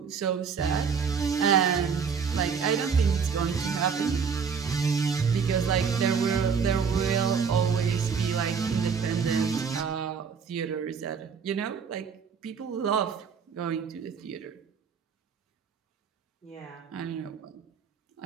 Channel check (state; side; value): quieter; left; 6.2 dB